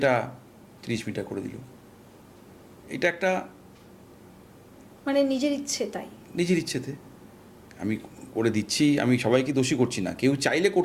30 মিটার করে দিল, এটা একটা মানে নিজের ইচ্ছে, তাই নিজের ইচ্ছেতে আমি করে দিচ্ছি, আমি সবাইকে দোষী করছি না, কেউ চাইলে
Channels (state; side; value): identical; both; correlation 1.00